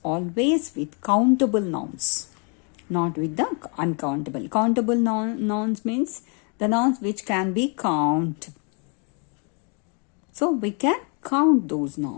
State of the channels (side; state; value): right; quieter; 37.4 dB